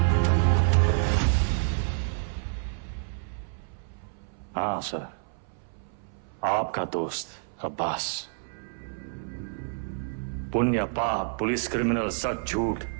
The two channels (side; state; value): left; silent; 59 dB below the other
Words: हाँ सर, आपका दोस्त अब्बास। पुण्य पाप, पुलिस क्रिमिनल, सच झूठ,